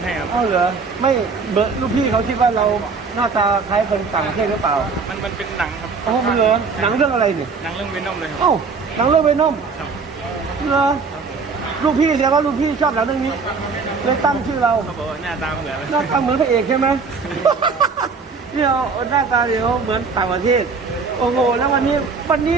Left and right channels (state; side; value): quieter; left; 4.8 dB